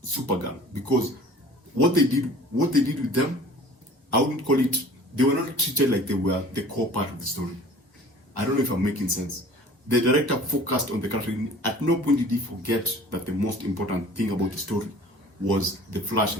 Supergirl, because what they did with them, I wouldn't call it, they were not treated like they were the core part of the story. I don't know if I'm making sense. The director focused on the character. At no point did he forget that the most important thing about the story was the Flash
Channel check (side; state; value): both; normal; correlation 0.46